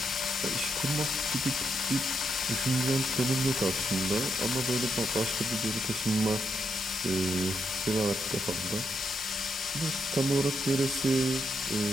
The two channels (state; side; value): normal; both; correlation 0.80